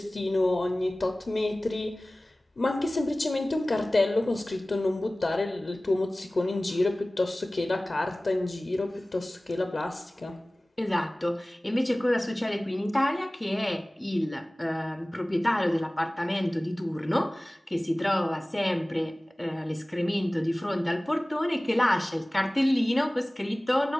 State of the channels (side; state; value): both; normal; correlation 0.98